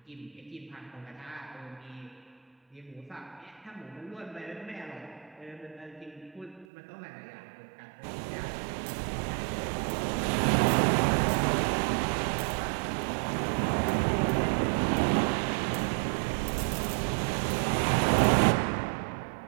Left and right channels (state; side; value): drops out; left; at 6.7 s